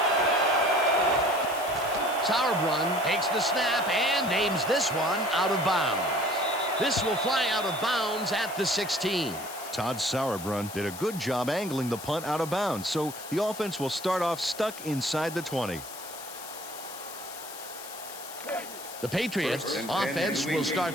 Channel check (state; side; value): noise; left; hiss, 12 dB below the sound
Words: Sauerbrunn takes the snap and aims this one out of bounds. This will fly out of bounds at the 16. Todd Sauerbrunn did a good job angling the punt out of bounds, so the offense will start off stuck inside the 20. The Patriots offense will